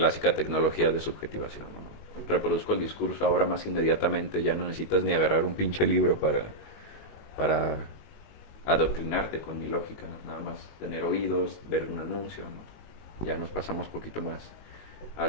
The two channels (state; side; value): late; right; 19 ms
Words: tecnología de subjetivación, ¿no? Reproduzco el discurso ahora más inmediatamente, ya no necesitas ni agarrar un pinche libro para adoctrinarte con mi lógica, nada más tener oídos, ver un anuncio, ¿no? Ya nos pasamos un poquito más a